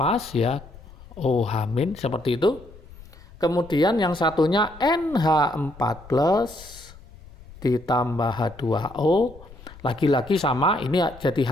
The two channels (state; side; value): noise; left; rumble, 20 dB below the sound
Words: ya, OH- seperti itu. Kemudian yang satunya NH4 plus ditambah H2O. Lagi-lagi sama, ini jadi